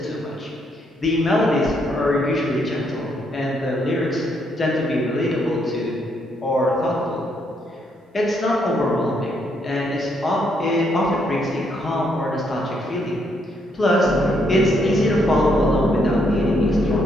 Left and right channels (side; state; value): both; normal; correlation 0.74